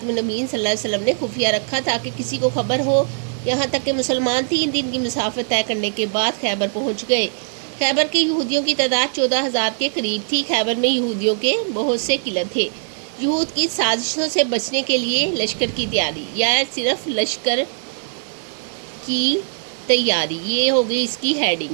النبیین صلی اللہ علیہ وسلم نے خفیہ رکھا تاکہ کسی کو خبر ہو، یہاں تک کہ مسلمان 3 دن کی مسافت طے کرنے کے بعد خیبر پہنچ گئے۔ خیبر کے یہودیوں کی تعداد 14,000 کے قریب تھی۔ خیبر میں یہودیوں کے بہت سے قلعے تھے۔ یہود کی سازشوں سے بچنے کے لیے لشکر کی تیاری، یا صرف لشکر کی تیاری، یہ ہو گئی اس کی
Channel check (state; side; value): silent; left; digital silence